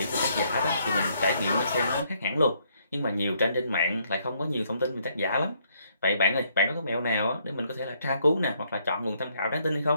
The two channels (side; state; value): both; inverted; correlation -0.70